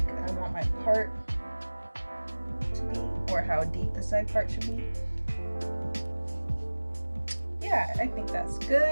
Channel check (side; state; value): both; inverted; correlation -1.00